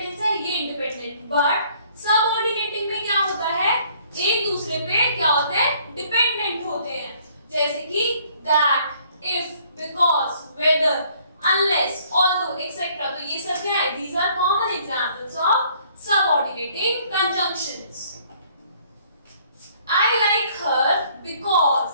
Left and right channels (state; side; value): inverted; both; correlation -0.61